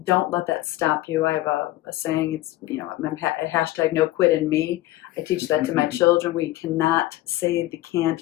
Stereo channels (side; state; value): right; quieter; 16.5 dB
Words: Don't let that stop you. I have a saying, it's, hashtag no quit in me. I teach that to my children. We cannot say the can't